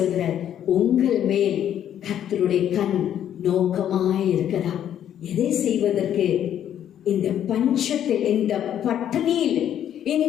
உங்கள் மேல் கர்த்தருடைய கண் நோக்கமாய் இருக்கிறதா? எதை செய்வதற்கு? இந்த பஞ்சத்தில், இந்த பட்டினியில்,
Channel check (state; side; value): quieter; right; 10.3 dB